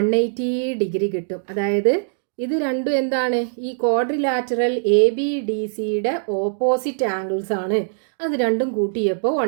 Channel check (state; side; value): silent; left; digital silence